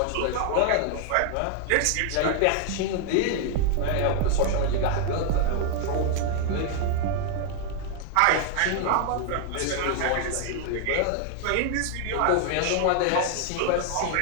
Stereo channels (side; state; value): both; different; correlation 0.00